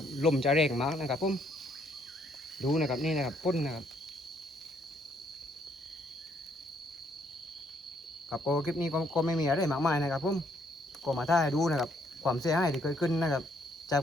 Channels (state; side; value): normal; both; correlation 0.69